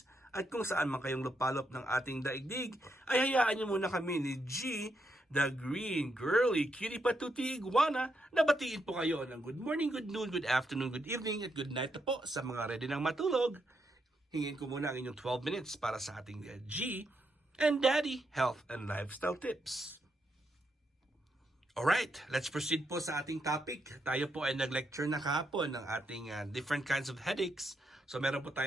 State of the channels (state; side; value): normal; both; correlation 0.81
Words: at kung saan man kayong lupalop ng ating daigdig ay hayaan nyo muna kami ni G, the green girly cutie patuti iguana na batiin po kayo ng good morning, good noon, good afternoon, good evening at good night na po sa mga ready ng matulog. Hingin ko muna ang inyong 12 minutes para sa ating G and Daddy Health and Lifestyle Tips. Alright, let's proceed po sa ating topic. Tayo po ay nag-lecture na kahapon ng ating different kinds of headaches. So meron po